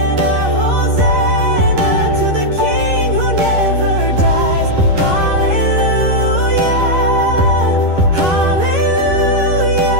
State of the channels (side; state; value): left; late; 11 ms